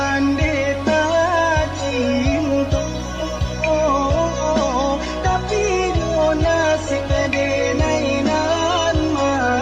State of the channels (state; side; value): identical; both; correlation 1.00